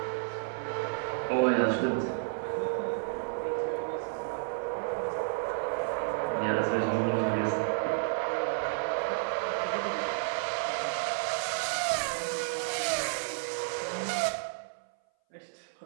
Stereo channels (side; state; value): left; silent; 57 dB below the other